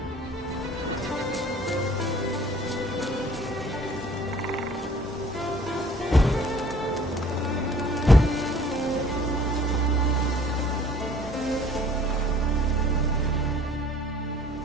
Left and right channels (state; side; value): normal; both; correlation 0.53